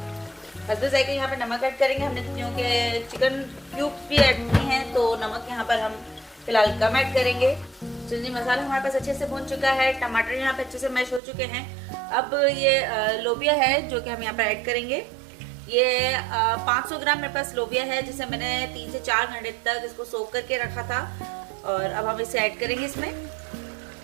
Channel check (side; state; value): left; drops out; at 11.2 s